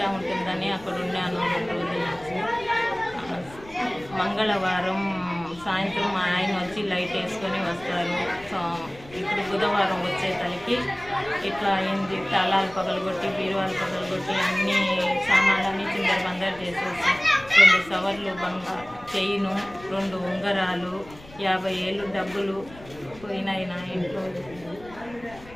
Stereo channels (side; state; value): left; noise; rumble, 20 dB below the sound